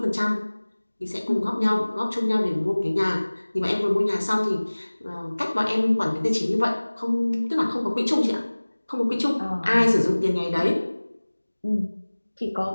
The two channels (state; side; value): inverted; both; correlation -1.00